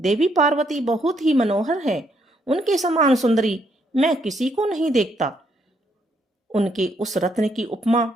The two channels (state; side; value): normal; both; correlation 0.73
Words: पार्वती बहुत ही मनोहर है। उनके समान सुंदरी मैं किसी को नहीं देखता। उनके उस रत्न की उपमा